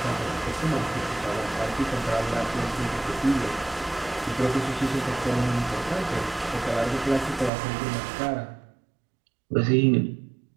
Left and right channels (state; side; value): drops out; left; at 7.5 s